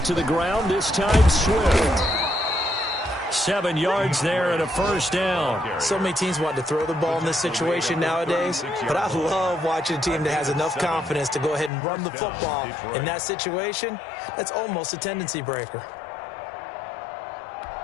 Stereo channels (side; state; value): right; drops out; at 11.7 s